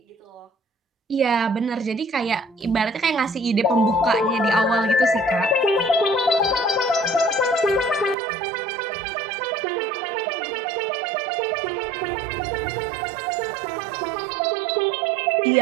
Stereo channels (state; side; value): drops out; left; at 8.2 s